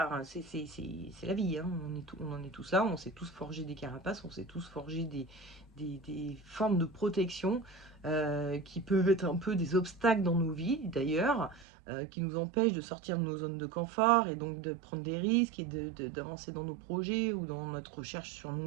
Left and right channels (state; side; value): drops out; left; at 11.7 s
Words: hein. C'est la vie, hein. On en est tous là, on s'est tous forgé des carapaces, on s'est tous forgé des formes de protection qui peuvent être un peu des obstacles dans nos vies d'ailleurs, qui nous empêchent de sortir de nos zones de confort et donc de prendre des risques et d'avancer dans nos projets ou dans notre recherche sur